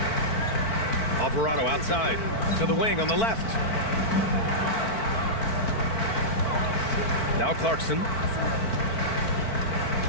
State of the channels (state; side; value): late; right; 4.5 ms